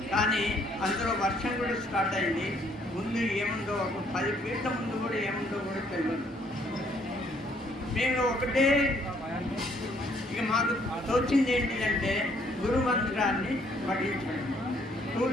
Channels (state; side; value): normal; both; correlation 0.66